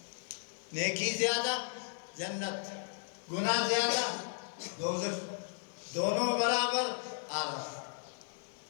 نیکی زیادہ جنت، گناہ زیادہ دوزخ، دونوں برابر آراف.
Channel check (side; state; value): right; silent; digital silence